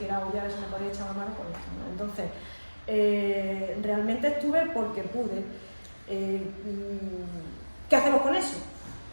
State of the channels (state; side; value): inverted; both; correlation -1.00